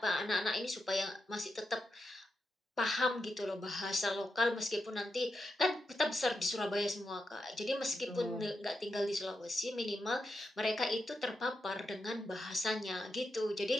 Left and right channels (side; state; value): both; normal; correlation 0.87